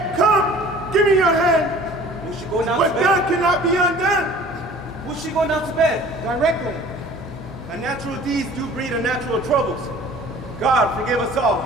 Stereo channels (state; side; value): normal; both; correlation 0.48